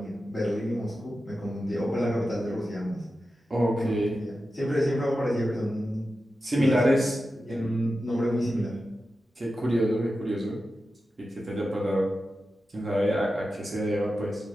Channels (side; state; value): both; normal; correlation 0.92